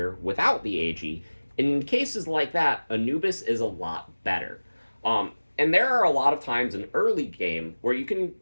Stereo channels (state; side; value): inverted; both; correlation -1.00